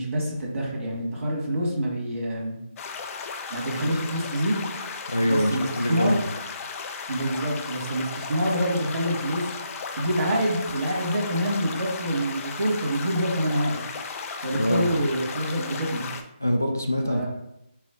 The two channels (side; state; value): both; inverted; correlation -0.79